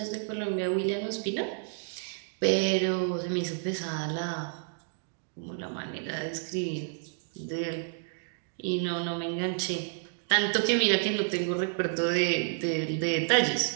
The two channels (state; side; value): silent; left; digital silence